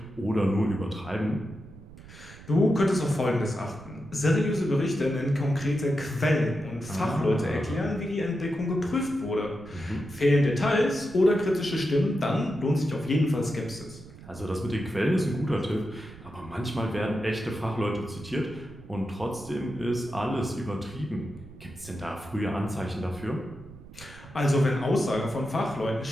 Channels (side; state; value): right; noise; rumble, 18 dB below the sound